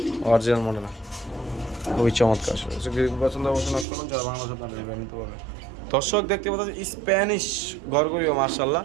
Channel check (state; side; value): drops out; left; at 3.9 s